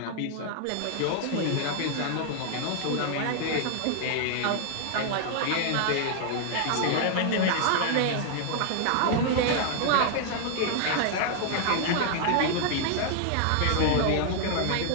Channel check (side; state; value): both; different; correlation 0.00